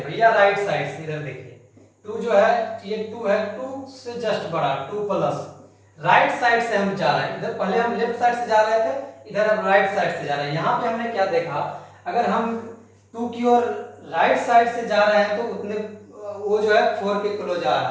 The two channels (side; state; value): both; identical; correlation 1.00